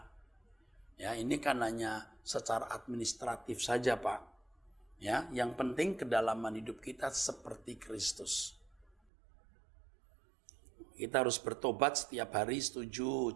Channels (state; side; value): drops out; left; at 8.9 s